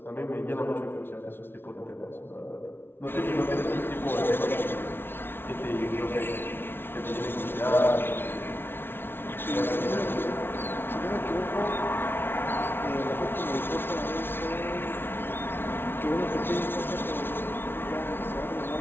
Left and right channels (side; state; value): right; late; 0.11 ms